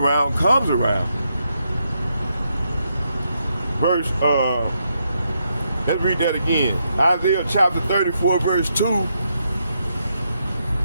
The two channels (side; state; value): both; inverted; correlation -0.80